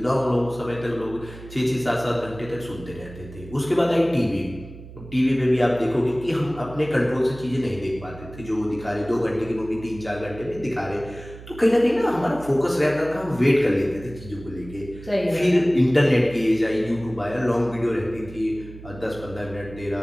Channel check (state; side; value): noise; right; hum, 16 dB below the sound